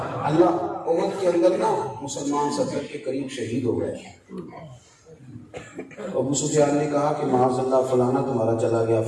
اللہ احد کے اندر نا مسلمان 70 کے قریب شہید ہو گئے. ابو سفیان نے کہا کہ معاذ اللہ فلانا تمہارا چلا گیا،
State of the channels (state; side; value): identical; both; correlation 1.00